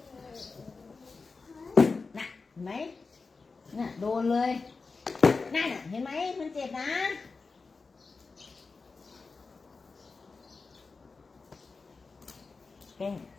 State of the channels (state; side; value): quieter; right; 4.3 dB